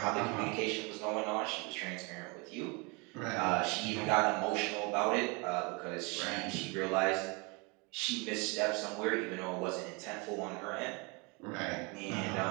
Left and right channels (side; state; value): left; quieter; 29.8 dB